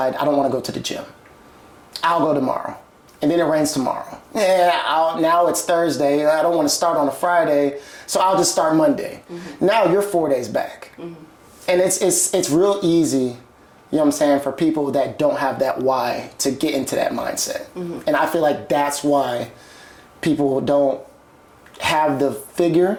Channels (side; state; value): both; identical; correlation 1.00